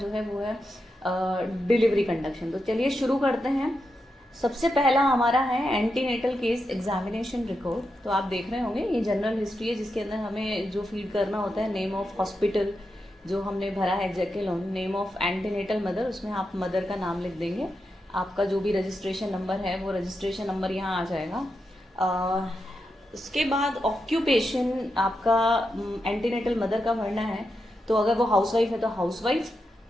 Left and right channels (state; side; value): normal; both; correlation 0.87